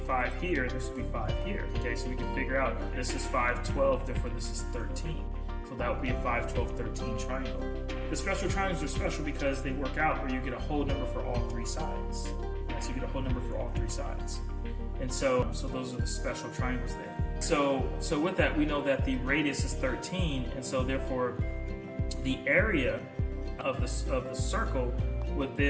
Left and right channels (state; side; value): identical; both; correlation 1.00